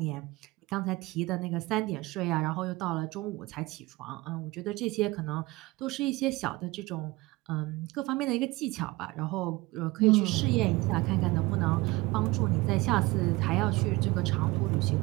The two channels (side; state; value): left; quieter; 21.2 dB